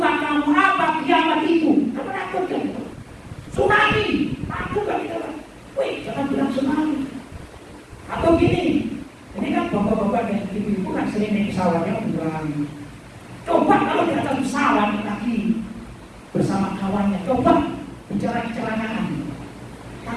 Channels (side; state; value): both; identical; correlation 1.00